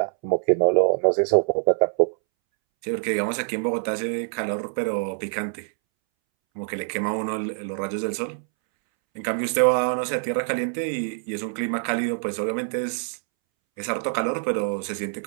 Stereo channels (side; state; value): left; silent; 62 dB below the other